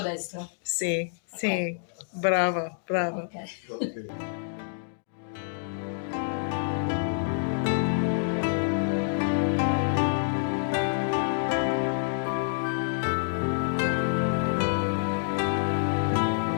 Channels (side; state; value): right; silent; digital silence